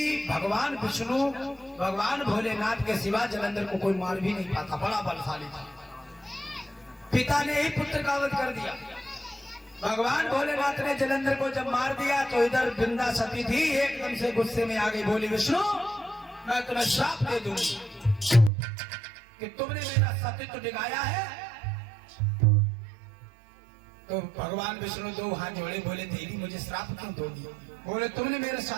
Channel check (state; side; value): drops out; left; at 18.5 s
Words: भगवान विष्णु भगवान भोलेनाथ के सिवा जलंधर को कोई मार भी नहीं पाता, बड़ा बलशाली था। पिता ने ही पुत्र का वध कर दिया। भगवान भोलेनाथ ने जलंधर को जब मार दिया तो इधर बिंदा सती थी, एकदम से गुस्से में आ गई, बोली विष्णु मैं तुम्हें श्राप दे दूंगी कि तुमने मेरा सतीत्व दिखाया है। तो भगवान विष्णु दो हाथ जोड़े, बोले देवी मुझे श्राप क्यों दोगी? बोले तुमने मेरे